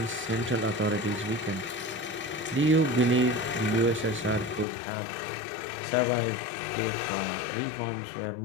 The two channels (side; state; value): right; drops out; at 4.7 s